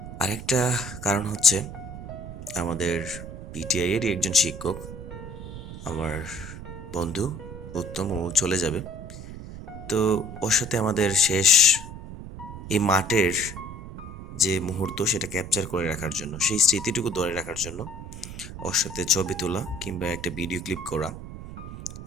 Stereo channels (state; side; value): noise; right; rumble, 11 dB below the sound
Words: আরেকটা কারণ হচ্ছে আমাদের পিটিআই এরই একজন শিক্ষক, আমার বন্ধু উত্তম, ও চলে যাবে। তো ওর সাথে আমাদের শেষ এই মাঠের যে মুহূর্ত সেটা ক্যাপচার করে রাখার জন্য, সেই স্মৃতিটুকু ধরে রাখার জন্য ওর সাথে ছবি তোলা কিংবা একটা ভিডিও ক্লিপ করা,